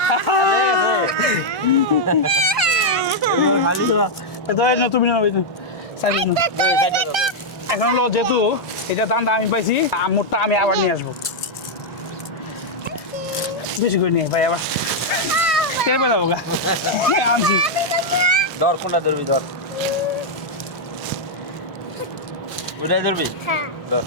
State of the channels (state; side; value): normal; both; correlation -0.03